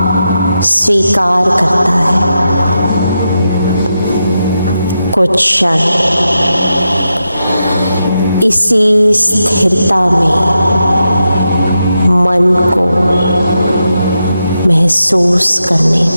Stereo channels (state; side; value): inverted; both; correlation -0.87